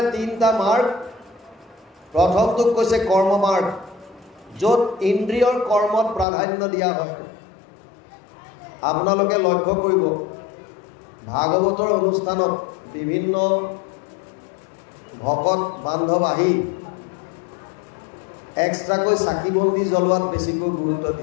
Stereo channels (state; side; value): drops out; right; at 6.2 s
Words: 3টা মাৰ্গ। প্ৰথমটোক কৈছে কৰ্ম মাৰ্গ, য'ত ইন্দ্ৰিয়ৰ কৰ্মত প্ৰাধান্য দিয়া হয়। আপোনালোকে লক্ষ্য কৰিব, ভাগৱতৰ অনুষ্ঠানত বিভিন্ন ভকত বান্ধৱ আহি এক্সট্ৰাকৈ চাকি বন্তি জ্বলোৱাত বেছিকৈ গুৰুত্ব